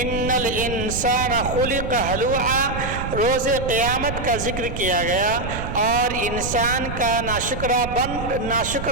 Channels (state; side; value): noise; right; rumble, 7 dB below the sound